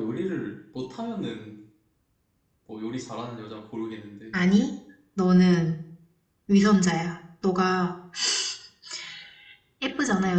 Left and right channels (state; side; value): identical; both; correlation 1.00